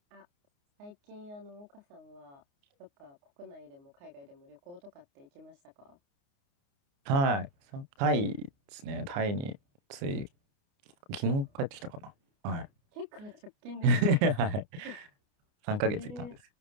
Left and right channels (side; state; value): left; late; 29 ms